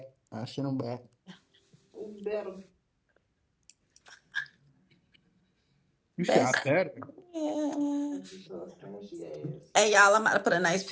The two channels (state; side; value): identical; both; correlation 1.00